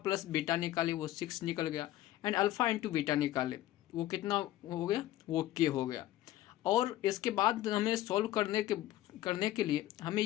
बीटा निकाले, वो 6 निकल गया, एंड अल्फ़ा इंटू बीटा निकाले, वो कितना हो गया, वो k हो गया। और इसके बाद हमें सॉल्व करने के लिए हमें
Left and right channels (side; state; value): right; quieter; 14.5 dB